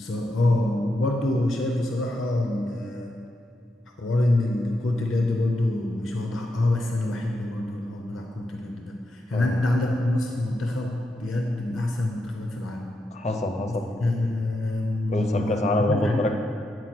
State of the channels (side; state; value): both; normal; correlation 0.85